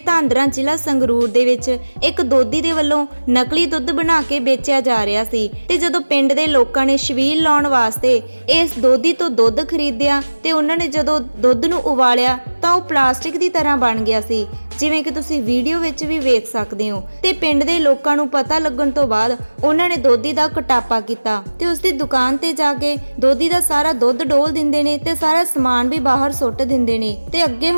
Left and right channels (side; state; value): both; inverted; correlation -1.00